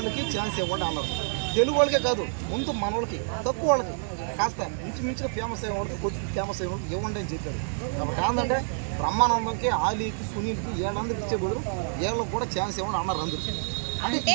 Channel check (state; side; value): silent; left; digital silence